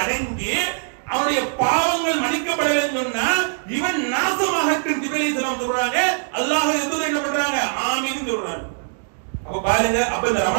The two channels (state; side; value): silent; left; digital silence